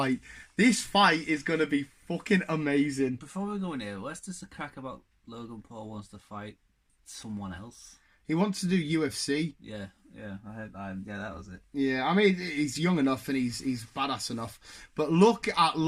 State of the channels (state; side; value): identical; both; correlation 1.00